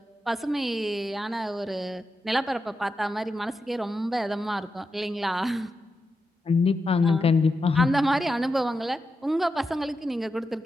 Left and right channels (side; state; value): both; normal; correlation 0.88